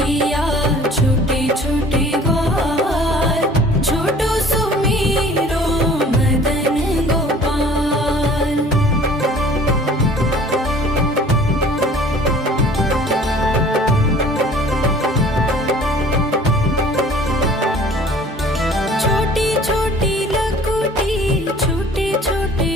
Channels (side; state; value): both; normal; correlation 0.50